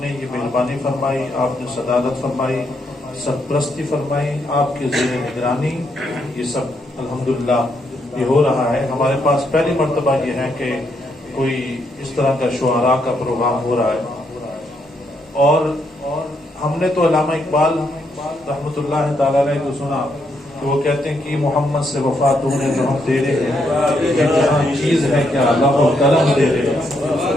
نے یہ مہربانی فرمائی، آپ نے صدارت فرمائی، سرپرستی فرمائی، آپ کے زیر نگرانی یہ سب الحمدللہ یہ ہو رہا ہے. ہمارے پاس پہلی مرتبہ یہ ہے کہ کوئی اس طرح کا شعراء کا پروگرام ہو رہا ہے. اور ہم نے تو علامہ اقبال رحمۃ اللہ تعالی علیہ کو سنا کہ وہ کہتے ہیں کہ محمد سے وفا تو نے جو ہم دے رہے ہیں یہ جہاں چیز ہے کیا اللہ و قلم دے رہے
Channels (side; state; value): both; normal; correlation 0.77